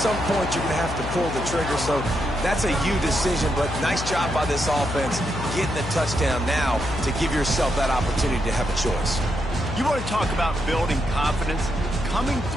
point you're going to have to pull the trigger. So that's a you decision, but nice job by this offense getting the touchdown now to give yourself that opportunity to have a choice. You want to talk about building confidence? Coming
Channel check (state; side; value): noise; left; hum, 7 dB below the sound